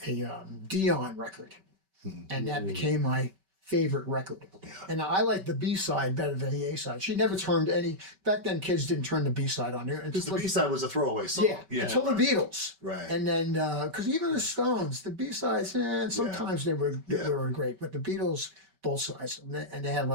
Dion record, and that became my favorite record. And I like the B side better than the A side. She never turned any. Back then, kids didn't turn the B side on there. Because the B side was a throwaway song. Yeah, until the Beatles. Right. And then, because even the Stones, the B sides, sometimes they were great, but the Beatles, both sides, and they had a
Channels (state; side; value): late; left; 5.2 ms